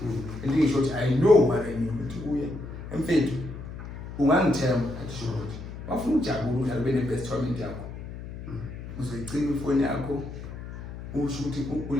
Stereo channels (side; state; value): left; noise; hum, 10 dB below the sound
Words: And in short, I know what I mean. I'm fair to one term at short. Often Jabu has been the best time in Jabu. So I clean before Yako, who shooting